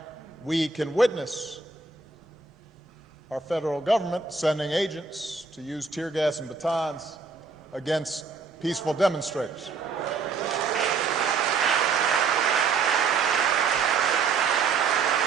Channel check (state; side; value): quieter; left; 4.9 dB